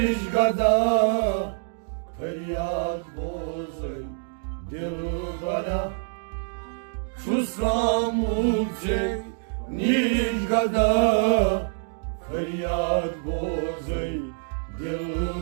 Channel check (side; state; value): left; silent; digital silence